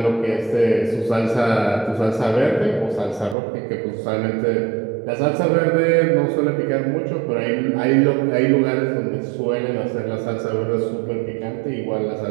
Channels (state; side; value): drops out; left; at 3.4 s